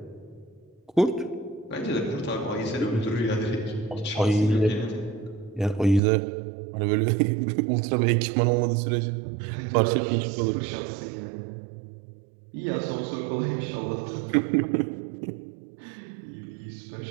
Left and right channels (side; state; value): left; drops out; at 6.0 s